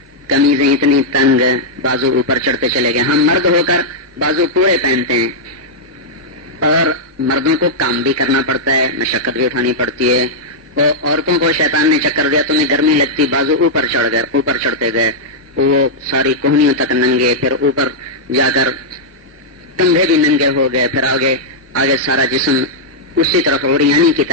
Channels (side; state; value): both; normal; correlation -0.07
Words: قمیضیں اتنی تنگ، بازو اوپر چڑھتے چلے گئے. ہم مرد ہو کر بازو پورے پہنتے ہیں، اور مردوں کو کام بھی کرنا پڑتا ہے، مشقت بھی اٹھانی پڑتی ہے. اور عورتوں کو شیطان نے چکر دیا، تمہیں گرمی لگتی، بازو اوپر چڑھ گئے، اوپر چڑھتے گئے، وہ ساری کوہنیوں تک ننگے، پھر اوپر جا کر کندھے بھی ننگے ہو گئے، پھر آگے سارا جسم اسی طرف اوریانی کی